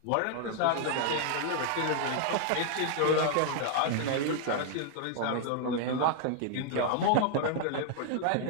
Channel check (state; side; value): different; both; correlation -0.01